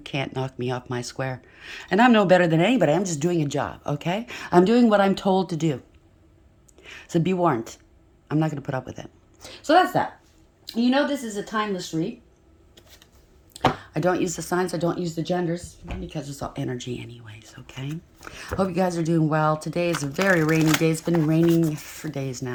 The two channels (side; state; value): both; identical; correlation 1.00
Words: knock me off my square. And I'm no better than anybody. I'm just doing a job, okay? I'm doing what I'm told to do. So be warned. I'm not going to put up with it. So that's that. You know this is a timeless read. I don't use the signs. I don't use the genders because it's all energy anyways, okay? Hope you guys are doing well. Today is a very rainy day. It's been raining for days